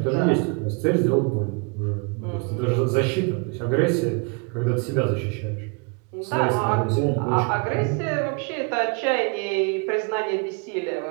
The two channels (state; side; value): quieter; left; 32.5 dB